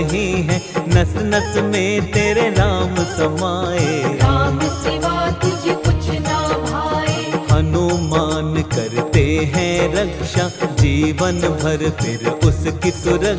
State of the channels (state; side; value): identical; both; correlation 1.00